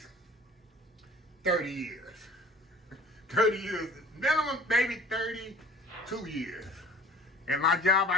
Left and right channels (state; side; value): normal; both; correlation 0.48